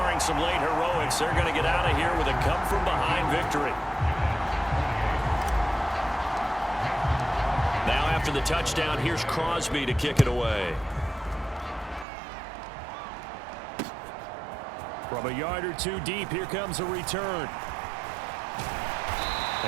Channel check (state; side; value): drops out; left; at 12.1 s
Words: some late heroics, they're going to get out of here with a come-from-behind victory. Now after the touchdown, here's Crosby to kick it away. From a yard or two deep, here comes a return.